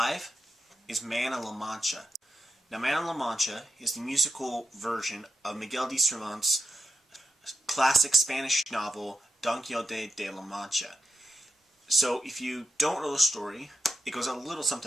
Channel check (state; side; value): normal; both; correlation 0.86